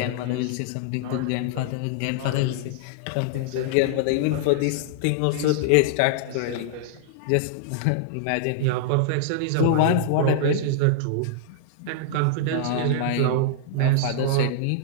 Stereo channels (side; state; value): both; different; correlation -0.01